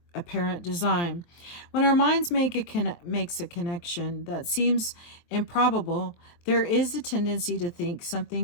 apparent design. When our minds makes a connection that seems improbable, there is a tendency to think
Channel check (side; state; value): right; late; 23 ms